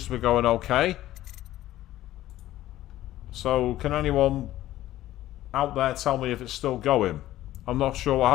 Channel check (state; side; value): quieter; right; 14.4 dB